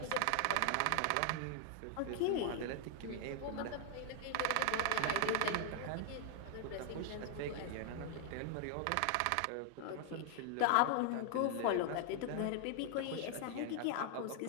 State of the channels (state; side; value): different; both; correlation 0.00